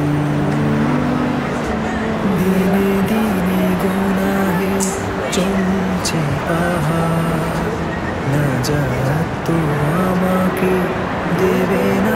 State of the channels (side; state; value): both; identical; correlation 1.00